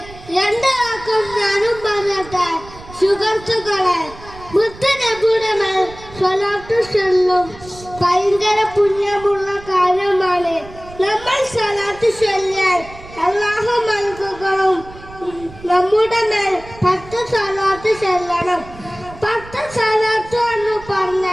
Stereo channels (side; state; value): right; noise; rumble, 18 dB below the sound